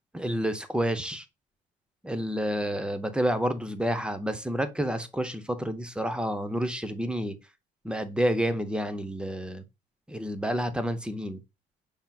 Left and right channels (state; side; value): normal; both; correlation 0.86